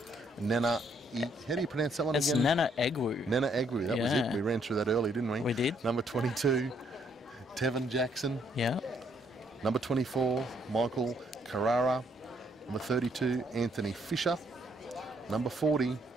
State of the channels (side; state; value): both; normal; correlation 0.70